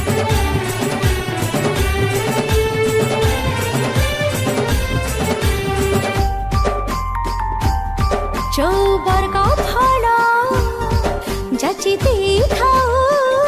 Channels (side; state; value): both; identical; correlation 1.00